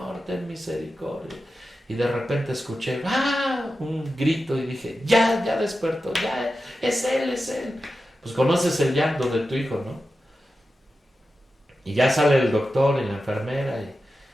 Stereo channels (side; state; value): both; normal; correlation 0.92